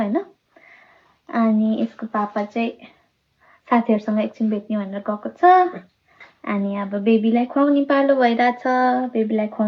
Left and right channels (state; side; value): identical; both; correlation 1.00